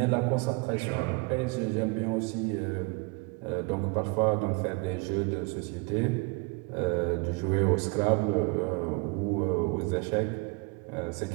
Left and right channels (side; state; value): left; quieter; 29.7 dB